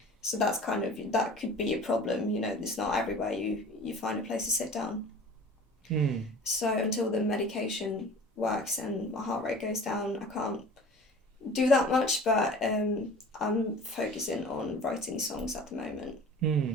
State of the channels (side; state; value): both; normal; correlation 0.43